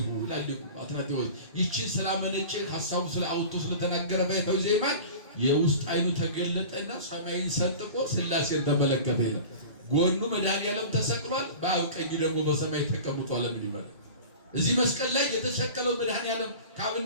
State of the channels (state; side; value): inverted; both; correlation -0.37